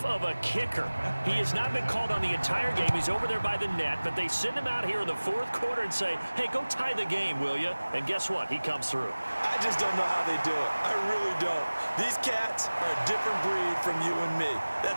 of a kicker. He has not been called on the entire game. He's over there by the net, but they send him out here in the 4th quarter and say, hey, go tie the game, will you? And guess what? He comes through. I just don't know how they do it. I really don't. These cats are a different breed from you and me.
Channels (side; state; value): both; inverted; correlation -1.00